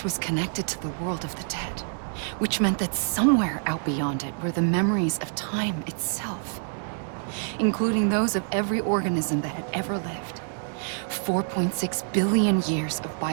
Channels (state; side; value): silent; left; digital silence